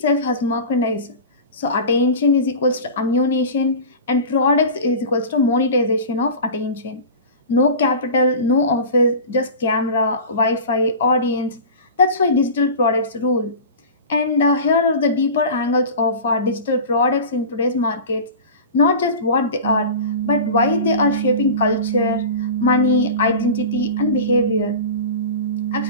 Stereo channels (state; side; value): inverted; both; correlation -0.33